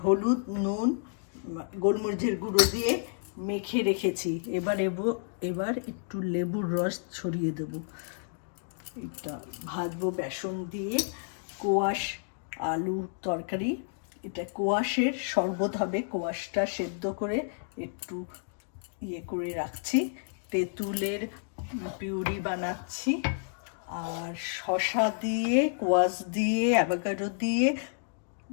হলুদ নুন গোলমরিচের গুঁড়ো দিয়ে মেখে রেখেছি। এবার একটু লেবুর রস ছড়িয়ে দেবো। এটা ভাজবো বেসন দিয়ে। কোয়াশ আলু তরকারি, এটা কোয়াশের শরবত হবে। কোয়াশটা সেদ্ধ করে একটু করে রাখছি। তেঁতুলের পিউরি বানাচ্ছি, আর শসা দিয়ে কোয়াশ দিয়ে অ্যাভোকাডো দিয়ে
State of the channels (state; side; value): silent; right; digital silence